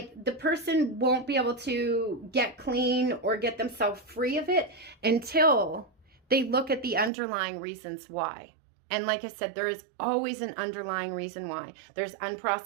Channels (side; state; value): left; drops out; at 7.1 s